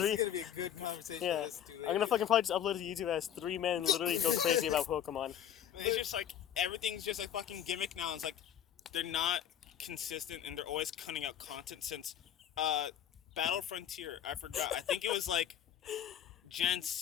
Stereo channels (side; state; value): right; quieter; 9.9 dB